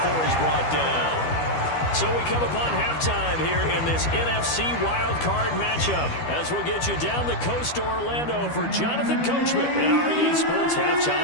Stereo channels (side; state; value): right; late; 12 ms